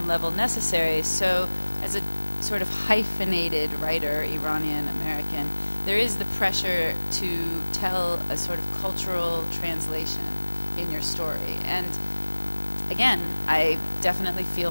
level necessary. So as a sort of hyphenated writer, Iranian American, there is the pressure to tell a sort of cultural translation in your story. And again, I definitely feel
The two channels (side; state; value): both; inverted; correlation -1.00